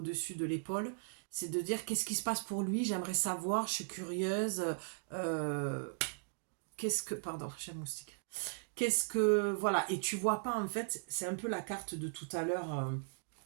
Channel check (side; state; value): left; silent; digital silence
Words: de l'épaule. C'est de dire qu'est-ce qui se passe pour lui, j'aimerais savoir, je suis curieuse. qu'est-ce que... Pardon, j'ai un moustique. Qu'est-ce que... Voilà, et tu vois pas, en fait, c'est un peu la carte de tout à l'heure